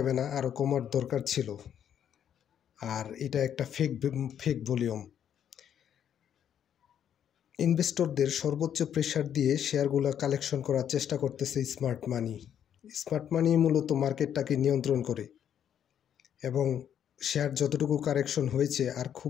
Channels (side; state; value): right; quieter; 9.4 dB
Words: না, আরও কমার দরকার ছিল। আর এটা একটা ফেক ভলিউম। ইনভেস্টরদের সর্বোচ্চ প্রেসার দিয়ে শেয়ারগুলো কালেকশন করার চেষ্টা করতেছে স্মার্ট মানি। স্মার্ট মানি মূলত মার্কেটটাকে নিয়ন্ত্রণ করে এবং শেয়ার যতটুকু কারেকশন হয়েছে আর